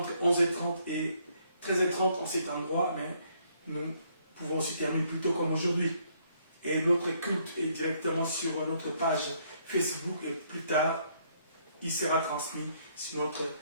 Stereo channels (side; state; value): both; inverted; correlation -0.69